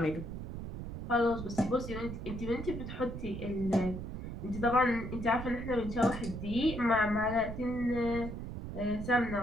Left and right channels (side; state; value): right; noise; rumble, 7 dB below the sound